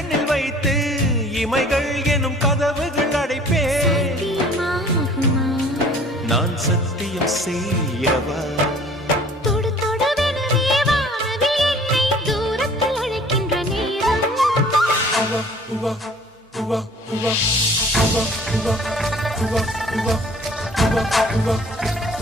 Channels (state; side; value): normal; both; correlation 0.51